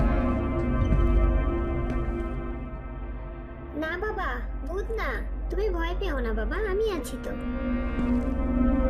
না বাবা, ভূত না। তুমি ভয় পেও না বাবা, আমি আছি তো।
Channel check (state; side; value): identical; both; correlation 1.00